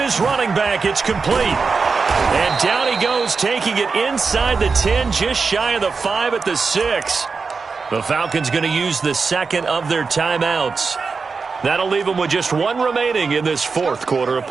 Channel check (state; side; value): quieter; left; 4.8 dB